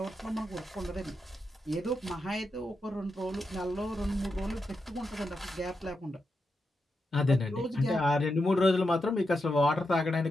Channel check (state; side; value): normal; both; correlation 0.86